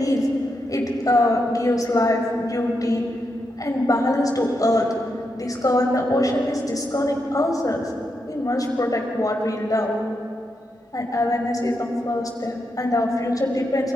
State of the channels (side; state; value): both; normal; correlation 0.84